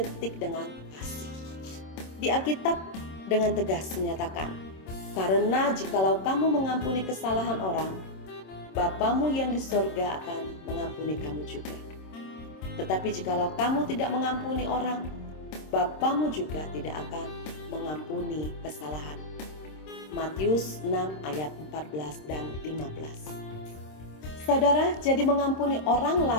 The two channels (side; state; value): right; late; 26 ms